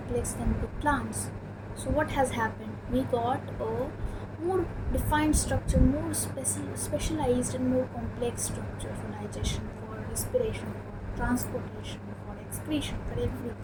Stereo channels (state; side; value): identical; both; correlation 1.00